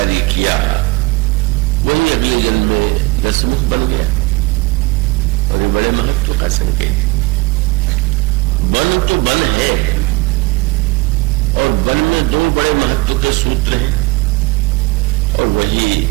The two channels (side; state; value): left; quieter; 22.7 dB